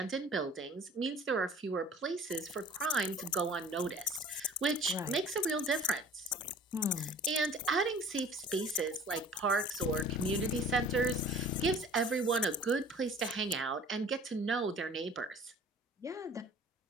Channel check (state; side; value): normal; both; correlation 0.47